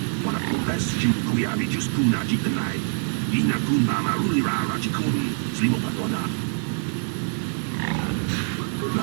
Wanakumbes Jim, Kuyabi Juskuna Jitanai, Inakun Marulira Rachikun, Slimopadona.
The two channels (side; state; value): left; silent; digital silence